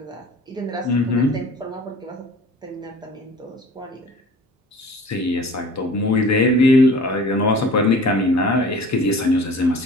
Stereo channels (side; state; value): both; normal; correlation 0.45